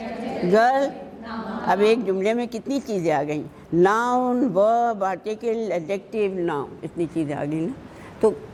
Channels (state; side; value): identical; both; correlation 1.00